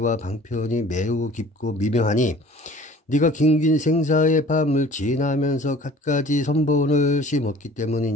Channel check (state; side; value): normal; both; correlation 0.48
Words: 방편이 매우 깊고 미명하니 네가 긴긴 생사의 밤을 지나면서 갖가지 선본을 심었기